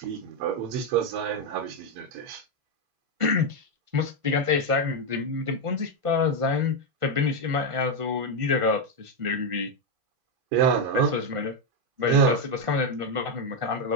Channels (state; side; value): late; left; 1.5 ms